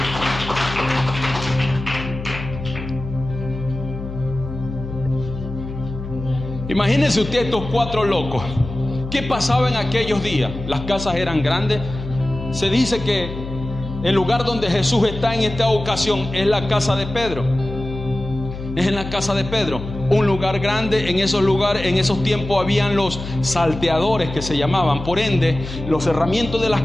Imagínense usted estos cuatro locos. ¿Qué pasaba en aquellos días? Las casas eran grandes. Se dice que el lugar donde Jesús está en esta ocasión es la casa de Pedro. Es en la casa de Pedro, un lugar grande. En esos lugares, en esos tiempos, habían los salteadores, que se llamaban. Por ende, los cerramientos de las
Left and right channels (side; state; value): left; noise; hum, 9 dB below the sound